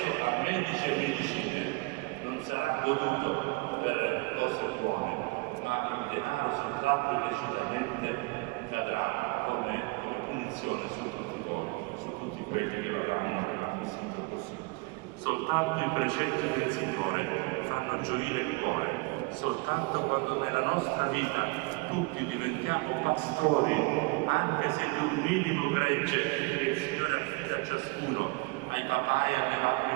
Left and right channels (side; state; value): left; quieter; 26.0 dB